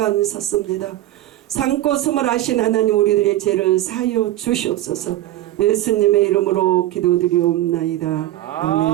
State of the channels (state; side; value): quieter; left; 14.6 dB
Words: 섰습니다. 산고 숨을 하신 하나님 우리들의 죄를 사하여 주시옵소서. 예수님의 이름으로 기도드리옵나이다.